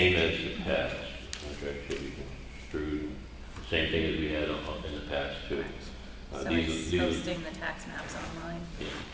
as the past. Contract should be construed, the same thing as we had in the past too. So These it's are- posting the tax maps online. Yeah,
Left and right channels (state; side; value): identical; both; correlation 1.00